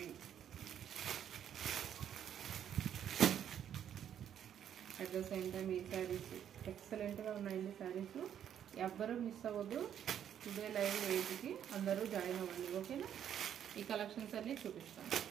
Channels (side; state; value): left; quieter; 9.6 dB